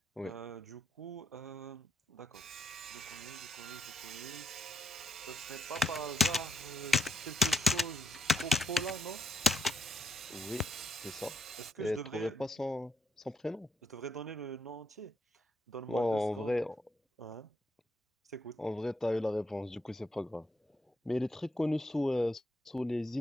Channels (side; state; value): both; normal; correlation 0.77